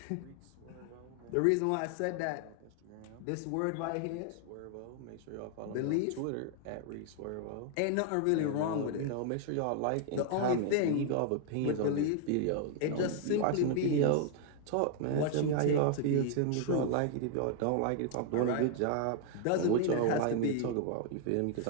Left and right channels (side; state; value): both; different; correlation 0.00